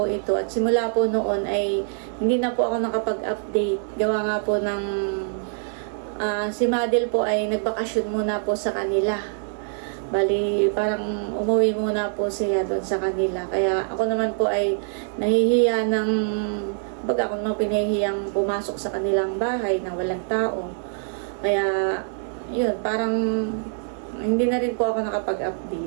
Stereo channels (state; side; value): silent; left; 62 dB below the other